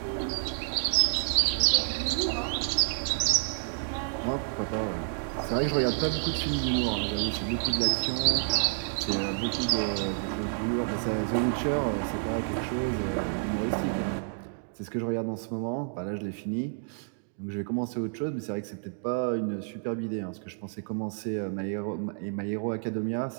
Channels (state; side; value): silent; left; digital silence